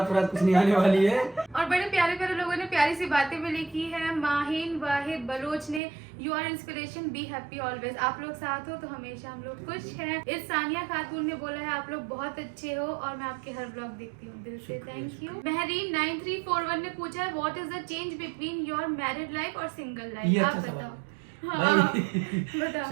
कुछ नहीं आने वाली है। और बड़े प्यारे प्यारे लोगों ने प्यारी सी बातें भी लिखी है। माहिन वाहिद बलोच ने you are inspiration, be happy always. आप लोग साथ हो तो हमेशा हम लोग खुश हैं। इस सानिया खातून ने बोला है आप लोग बहुत अच्छे हो और मैं आपके हर ब्लॉग देखती हूँ, दिल से थैंक यू। महरीन 9341 ने पूछा है what is the change between your married life और सिंगल लाइफ? ये आप अच्छा बताओ। सवाल हाँ, भाई, बताओ।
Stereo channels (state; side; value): drops out; left; at 5.8 s